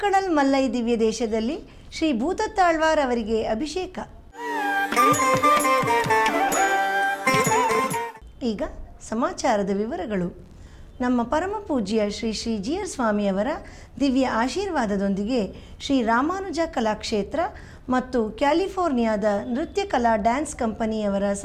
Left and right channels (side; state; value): both; identical; correlation 1.00